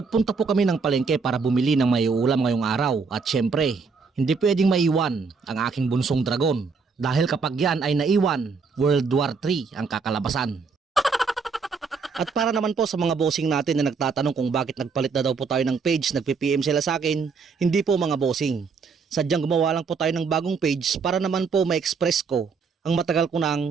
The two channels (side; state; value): left; quieter; 5.0 dB